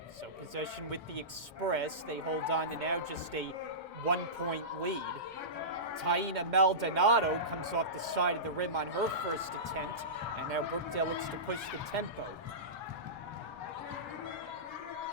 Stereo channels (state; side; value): normal; both; correlation -0.20